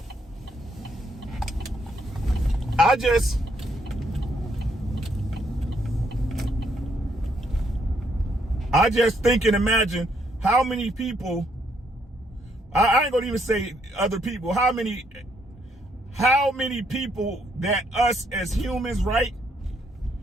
I just think and imagine how many people, I ain't gonna even say other people, how many people that us as humans, right,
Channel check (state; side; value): normal; both; correlation 0.72